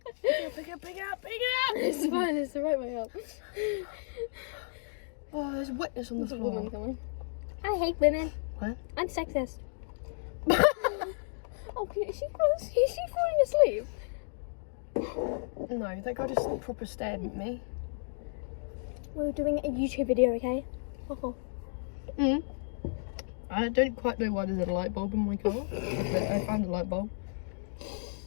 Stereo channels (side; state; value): right; silent; digital silence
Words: Pick it up! It's fine, it's the right way up. Oh, there's wetness on the There's a floor. woman coming. I hate women. What? I'm sexist. Oh, is she falling asleep? No, that guy just proper stared at me. We're doing a YouTube video, okay? Oh. I don't quite know why there's a light bulb in my car, but I found a light bulb.